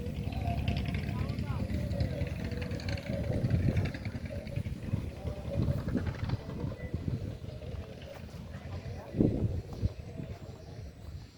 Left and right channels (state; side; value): identical; both; correlation 1.00